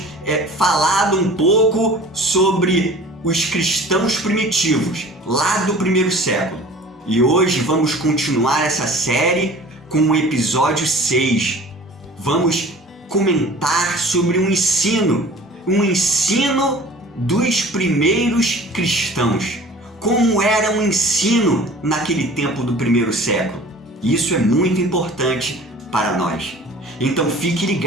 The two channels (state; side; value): normal; both; correlation 0.45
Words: falado um pouco sobre os cristãos primitivos, lá do primeiro século. E hoje vamos continuar essa série com o episódio 6. Vamos comentar sobre um ensino dos primeiros cristãos. Como era o ensino naquele tempo do primeiro século. Isso é muito importante para nós. Então fique